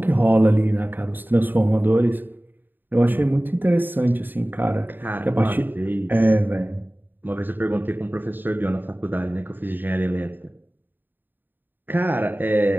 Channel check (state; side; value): late; left; 0.092 ms